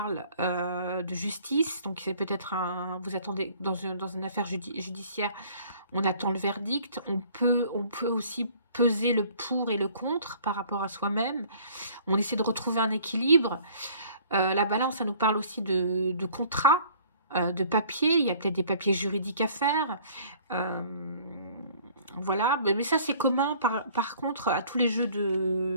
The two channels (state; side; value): inverted; both; correlation -0.53